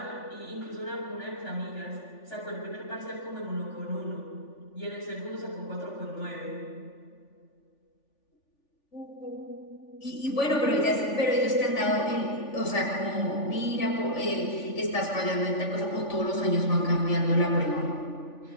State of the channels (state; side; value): late; right; 3.4 ms